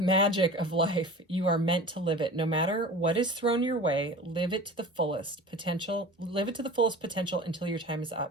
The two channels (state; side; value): normal; both; correlation 0.37